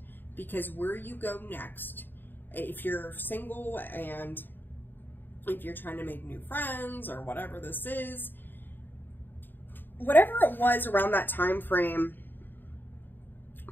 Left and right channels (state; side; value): late; right; 0.093 ms